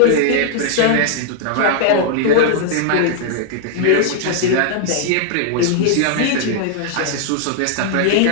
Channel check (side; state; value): both; different; correlation 0.00